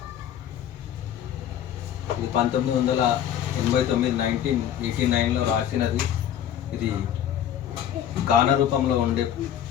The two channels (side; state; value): right; quieter; 10.2 dB